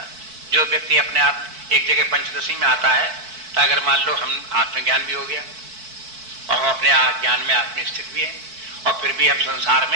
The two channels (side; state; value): left; late; 4.5 ms